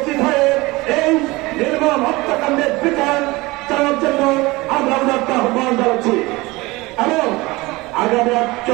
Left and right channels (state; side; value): quieter; left; 21.8 dB